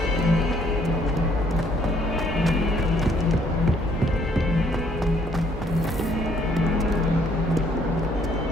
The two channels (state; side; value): normal; both; correlation 0.65